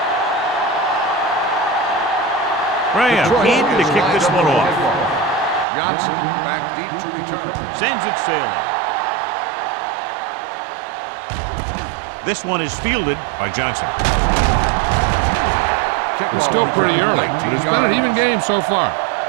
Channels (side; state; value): left; drops out; at 5.7 s